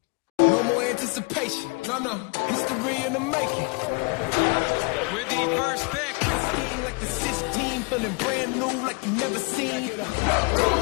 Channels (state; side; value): quieter; right; 31.4 dB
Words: No more anticipation. No, no. History in the making. With the first pick. Scheme like the 16, feeling brand new like you never seen.